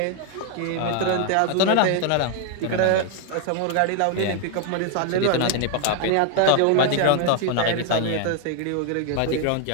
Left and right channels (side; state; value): both; different; correlation 0.00